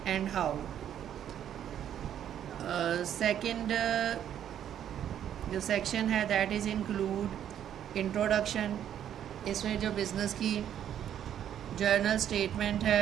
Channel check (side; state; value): left; quieter; 10.1 dB